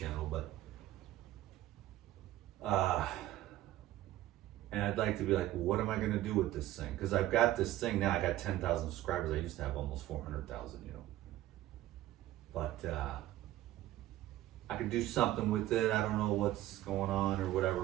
but and I'd like to be like, what am I gonna do with this thing? Because I've got this thing now. I got 10,000 subscribers. I used to have almost 400,000, you know. But I could do something with it. I don't know what's going on or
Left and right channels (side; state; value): left; quieter; 14.7 dB